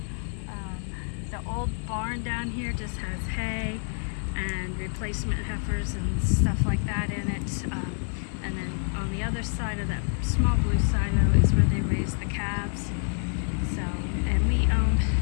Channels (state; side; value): silent; right; 60 dB below the other